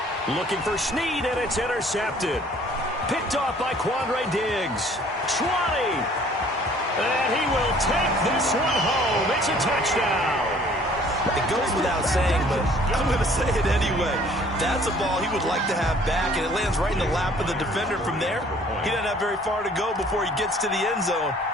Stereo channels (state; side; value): normal; both; correlation 0.56